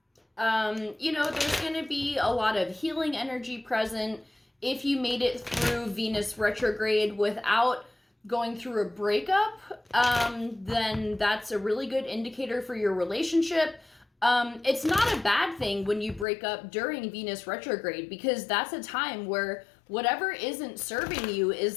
there's going to be a lot of healing energy present. If you made it through Venus retrograde without going through a breakup, then that's a really good indicator for your relationship. It's not a bad thing when you break up during Venus retrograde, because that's a time where whatever isn't serving you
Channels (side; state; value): right; drops out; at 16.2 s